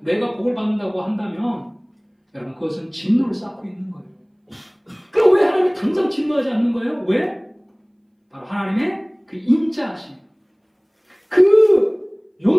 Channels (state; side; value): identical; both; correlation 1.00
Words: 복을 받는다고 한다면 여러분, 그것은 진노를 쌓고 있는 거예요. 그럼 왜 하나님이 당장 진노하지 않는 거예요? 왜? 바로 하나님의 그 인자하심, 그